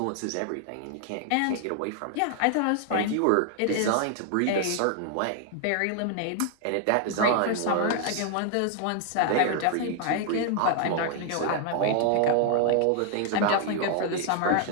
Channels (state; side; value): different; both; correlation 0.00